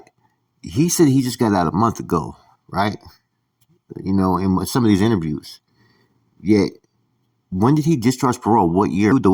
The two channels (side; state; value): both; identical; correlation 1.00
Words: He said he just got out a month ago, right? In some of these interviews. Yet, when did he discharge parole? What year? The